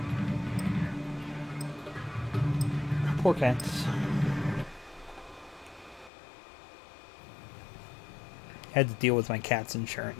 Poor cats. Had to deal with my cat's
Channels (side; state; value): right; drops out; at 6.1 s